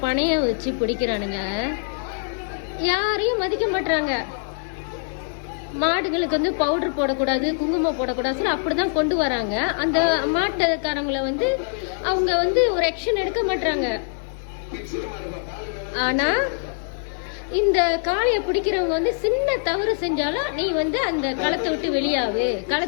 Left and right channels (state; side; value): silent; right; 63 dB below the other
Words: பணைய வச்சு பிடிக்கிறானுங்க. யாரையும் மதிக்க மாட்டுறாங்க. மாடுகளுக்கு வந்து பவுடர் போடக்கூடாது, குங்குமம் போடக்கூடாது சொல்லி அப்படிதான் கொண்டு வராங்க. அந்த மாட்டுக்காரங்களை வந்து அவங்க வந்து ஒரு ஆக்ஷன் எடுக்க மாட்டாங்க. ஆனா இந்த காளையை பிடிக்கிறவங்க வந்து சின்ன தவறு செஞ்சாலும் நீ வந்து அந்த களத்தை விட்டு